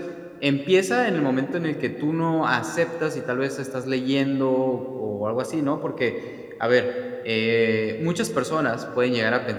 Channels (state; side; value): identical; both; correlation 1.00